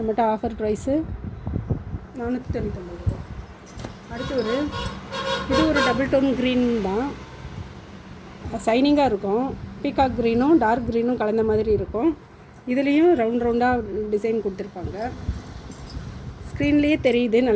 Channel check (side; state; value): both; identical; correlation 1.00